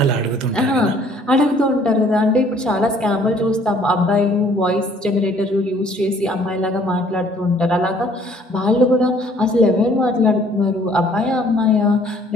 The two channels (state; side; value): normal; both; correlation 0.59